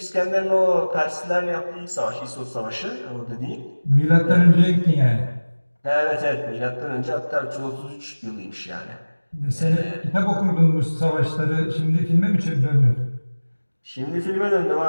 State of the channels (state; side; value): inverted; both; correlation -1.00